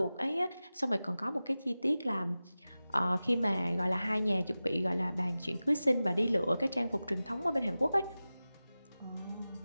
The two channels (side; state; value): both; inverted; correlation -0.96